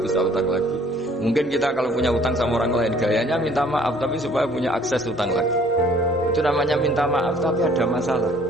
bisa utang lagi. Mungkin kita kalau punya utang sama orang lain gayanya minta maaf tapi supaya punya akses utang lagi. Itu namanya minta maaf tapi ada masalah.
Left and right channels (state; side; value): normal; both; correlation 0.58